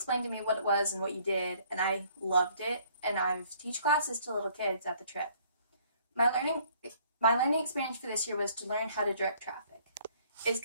to me what it was and what you did, and I loved it, and I've teach classes to little kids at the trip. My learning experience for this year was to learn how to direct traffic. It's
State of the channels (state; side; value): inverted; both; correlation -0.60